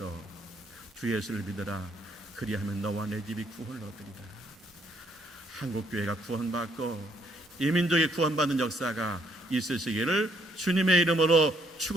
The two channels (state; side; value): normal; both; correlation 0.70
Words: 주 예수를 믿으라. 그리하면 너와 내 집이 구원을 얻으리라. 한국교회가 구원받고 이 민족이 구원받는 역사가 있으시기를 주님의 이름으로